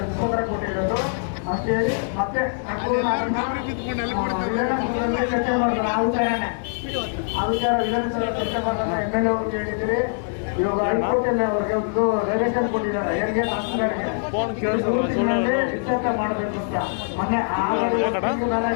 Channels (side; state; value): right; silent; digital silence